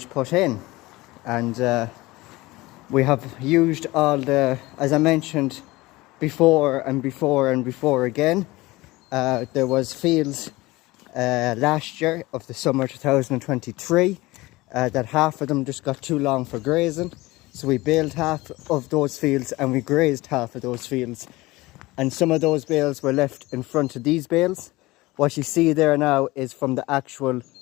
put in. And we have used all the, as I mentioned before again, there was fields last year of the summer 2023 that half of them just got too long for grazing. So we baled half of those fields and we grazed half of those fields. And some of those bales were left in front of these bales. What you see there now is from the actual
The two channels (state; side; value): quieter; right; 20.4 dB